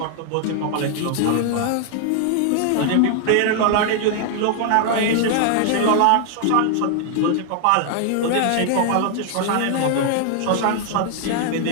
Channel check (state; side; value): different; both; correlation 0.00